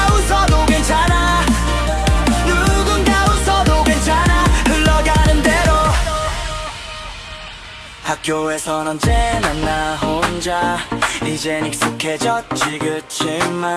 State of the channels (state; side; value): identical; both; correlation 1.00